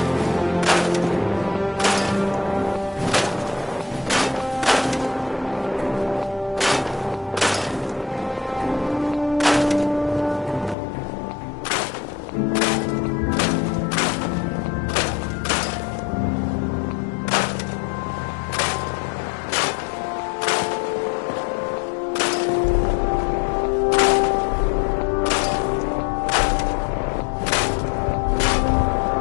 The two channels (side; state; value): right; drops out; at 10.8 s